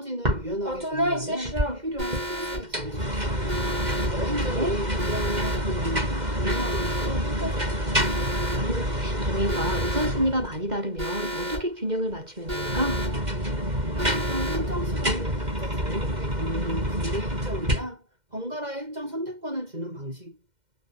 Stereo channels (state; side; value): late; left; 2.1 ms